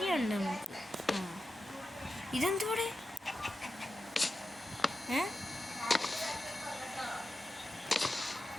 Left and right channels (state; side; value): normal; both; correlation 0.91